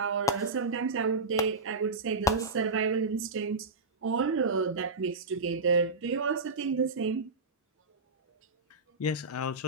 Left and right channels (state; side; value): quieter; left; 3.6 dB